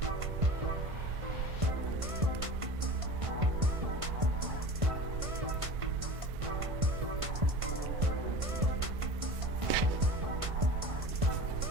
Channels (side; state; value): left; late; 1.5 ms